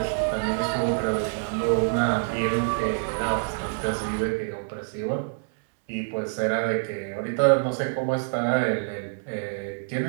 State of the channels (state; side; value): silent; left; digital silence